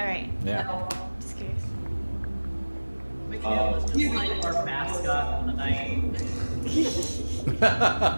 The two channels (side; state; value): both; inverted; correlation -1.00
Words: right. Yeah. Just curious. Mikhail was just like our mascot for the night.